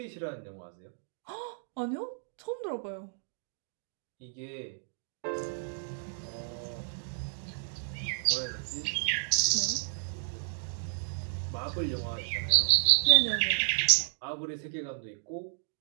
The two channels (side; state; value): left; silent; digital silence